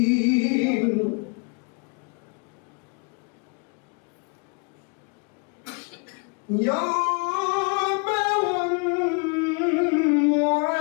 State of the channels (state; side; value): quieter; right; 35.1 dB